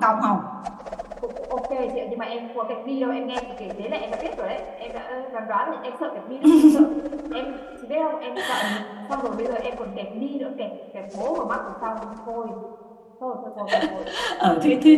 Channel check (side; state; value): both; identical; correlation 1.00